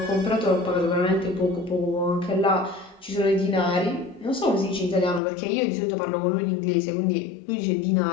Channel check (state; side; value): drops out; right; at 5.2 s